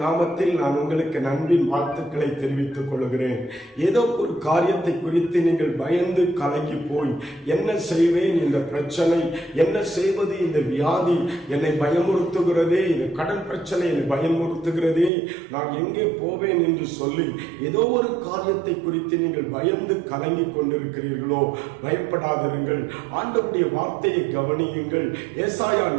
நாமத்தில் நான் உங்களுக்கு நன்பின் வாழ்த்துக்களை தெரிவித்துக் கொள்கிறேன். ஏதோ ஒரு காரியத்தை குறித்து நீங்கள் பயந்து கலங்கி போய் என்ன செய்வேன், இந்த பிரச்சனை என்ன செய்வது, இந்த வியாதி என்னை பயமுறுத்துகிறதே, இந்த கடன் பிரச்சனை என்னை பயமுறுத்துகிறதே, நான் எங்கே போவேன் என்று சொல்லி ஏதோ ஒரு காரியத்தை குறித்து நீங்கள் பயந்து கலங்கி கொண்டிருக்கிறீர்களோ, பயப்படாதிருங்கள். ஆண்டவருடைய வார்த்தையை கவனியுங்கள். ஏசாயா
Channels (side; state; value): left; drops out; at 15.1 s